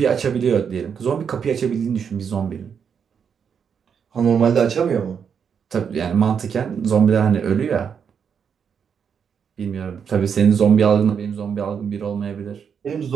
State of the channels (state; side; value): quieter; left; 7.1 dB